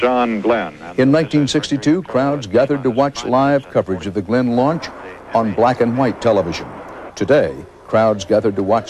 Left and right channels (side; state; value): both; identical; correlation 1.00